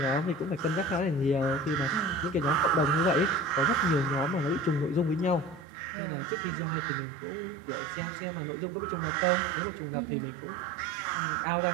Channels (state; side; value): drops out; left; at 5.7 s